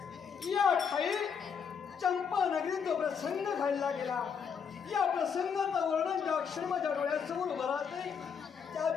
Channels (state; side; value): quieter; right; 6.7 dB